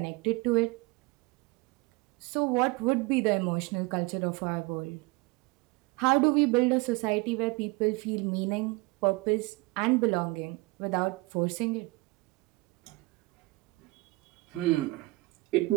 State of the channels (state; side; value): quieter; left; 24.0 dB